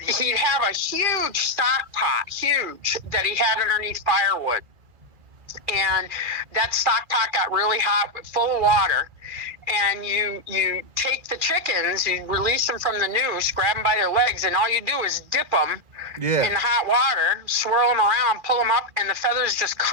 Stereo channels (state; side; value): late; left; 2.4 ms